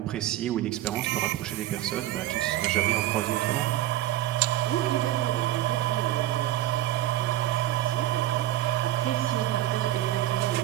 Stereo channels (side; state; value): left; quieter; 13.9 dB